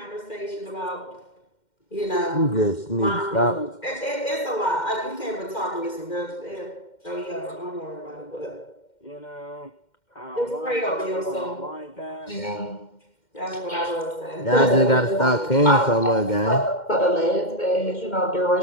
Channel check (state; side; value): late; right; 2.1 ms